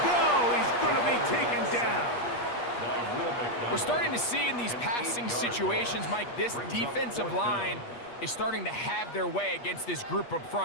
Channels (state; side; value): late; right; 8.4 ms